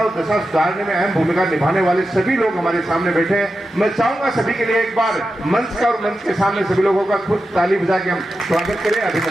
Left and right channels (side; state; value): both; normal; correlation 0.90